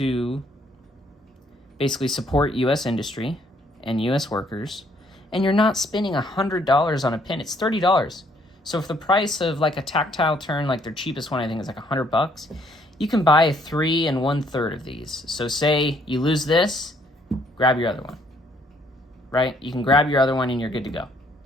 basically support US industry and US workers, and you're not spending $100 on a pen. It's $30. So if the price of like a tactile turn, like their cheapest one, I think is like $100, you can buy 3 1/3 of these. So say you lose this, grab your other one, right? You can grab your other one and you're good to go.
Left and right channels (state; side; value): normal; both; correlation 0.66